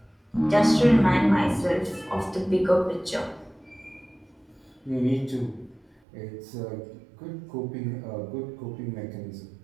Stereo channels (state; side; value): drops out; left; at 6.0 s